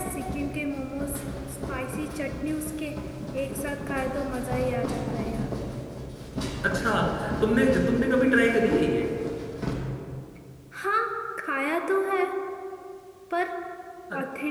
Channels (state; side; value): identical; both; correlation 1.00